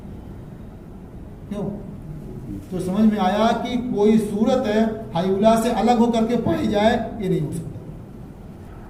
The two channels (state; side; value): identical; both; correlation 1.00